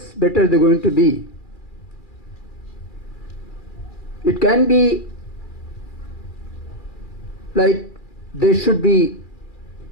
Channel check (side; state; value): right; late; 2.3 ms